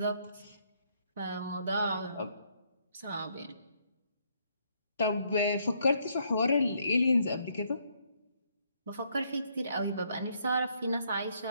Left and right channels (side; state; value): both; inverted; correlation -0.71